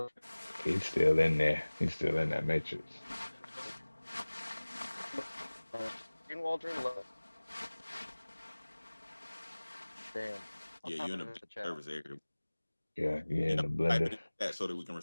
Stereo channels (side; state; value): both; inverted; correlation -1.00